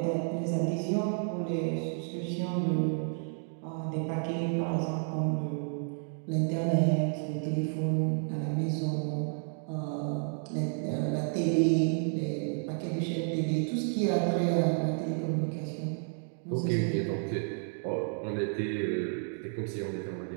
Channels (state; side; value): silent; left; 57 dB below the other